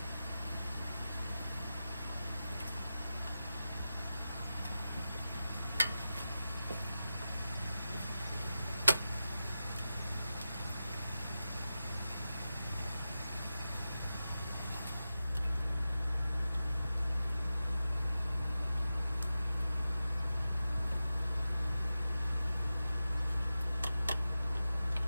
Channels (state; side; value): inverted; both; correlation -0.92